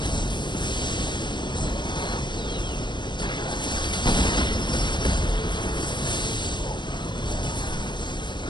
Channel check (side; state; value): right; late; 0.22 ms